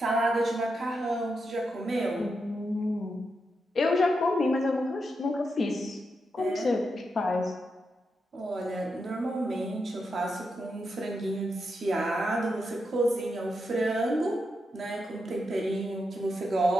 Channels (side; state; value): both; normal; correlation 0.85